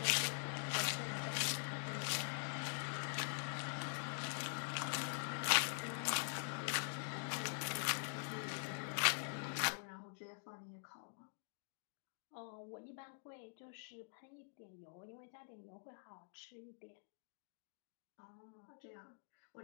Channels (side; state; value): right; silent; digital silence